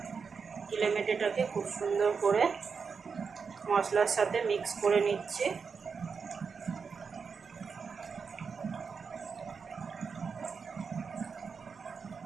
ইলে মেটেটাকে খুব সুন্দর করে মশলার সাথে মিক্স করে নিচ্ছি।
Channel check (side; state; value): left; quieter; 5.6 dB